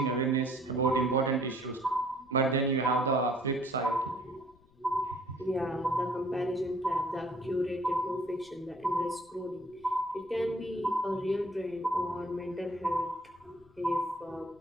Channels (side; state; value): left; noise; rumble, 29 dB below the sound